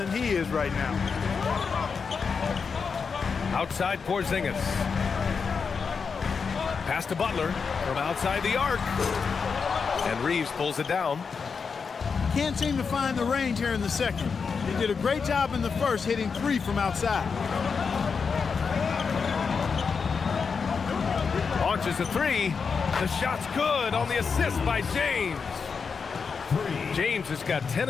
he is right now. Outside Porzingis. Pass to Butler from outside the arc. And Reeves pulls it down. Can't seem to find the range here in the second. He did a great job in the first, hitting 3 from outside. Launches a 3. The shot's good on the assist by James. James has got 10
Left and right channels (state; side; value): quieter; right; 5.5 dB